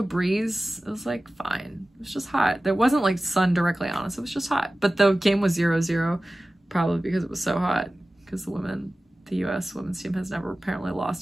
breeze. It was like fine. It was just hot. There wasn't like sun directly on us. It was just hot. But the game was 0-0, probably because it was so hot. Because the U.S. women's team has never apparently lost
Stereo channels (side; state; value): both; normal; correlation 0.96